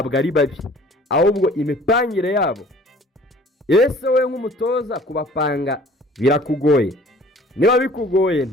ari babi, ahubwo imipangire yabo. Ese we nk'umutoza kubapanga birakugoye? Niba bikugoye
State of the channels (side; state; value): both; normal; correlation 0.51